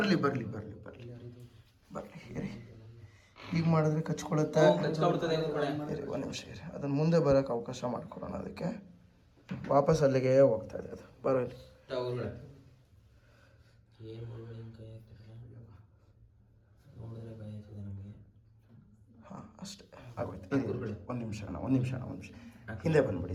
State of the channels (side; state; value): both; identical; correlation 1.00